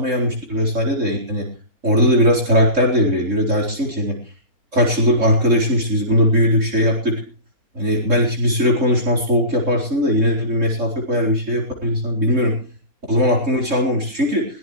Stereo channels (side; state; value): left; late; 3.6 ms